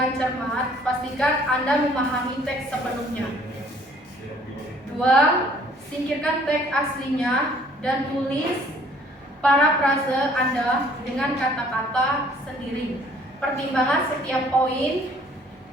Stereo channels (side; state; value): both; normal; correlation 0.58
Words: cermat, pastikan Anda memahami teks sepenuhnya. 2. Singkirkan teks aslinya dan tulis parafrase Anda dengan kata-kata sendiri. Pertimbangan setiap poin